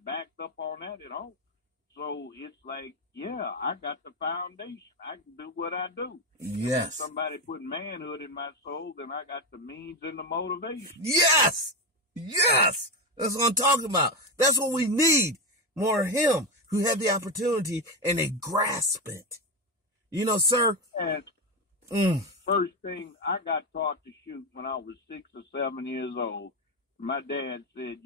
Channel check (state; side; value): normal; both; correlation 0.13